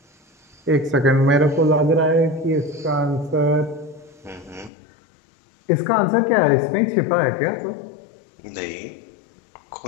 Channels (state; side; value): drops out; right; at 4.7 s